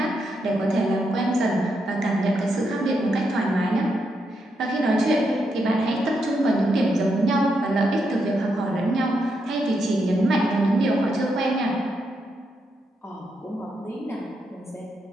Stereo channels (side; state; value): both; normal; correlation 0.81